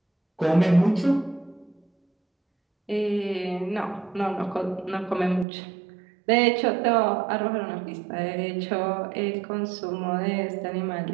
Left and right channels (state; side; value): drops out; left; at 5.5 s